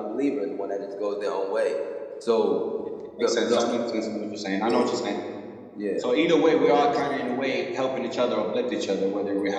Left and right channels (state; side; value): identical; both; correlation 1.00